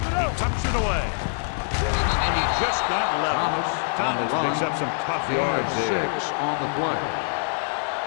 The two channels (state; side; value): silent; right; digital silence